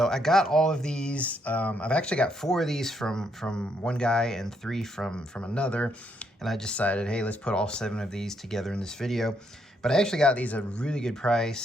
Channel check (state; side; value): normal; both; correlation 0.75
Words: I got all of these. I've actually got 4 of these from one guy and 3 from another. And I decided, hey, let's put all 7 of these together in this video. But I actually got these at a really good